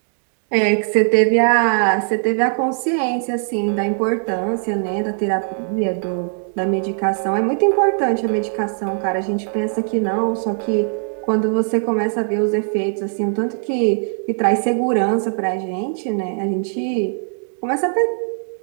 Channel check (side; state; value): left; silent; digital silence